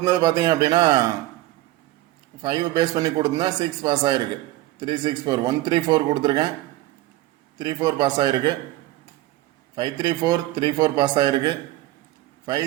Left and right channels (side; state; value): left; quieter; 16.6 dB